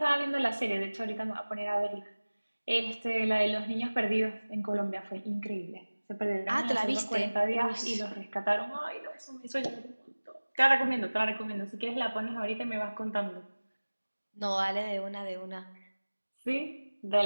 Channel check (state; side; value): inverted; both; correlation -1.00